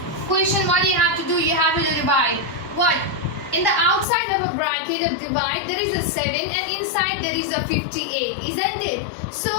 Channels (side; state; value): right; drops out; at 4.0 s